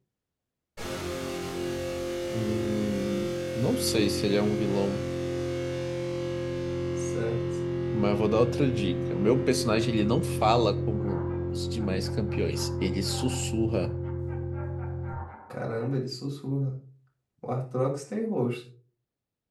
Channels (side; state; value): both; identical; correlation 1.00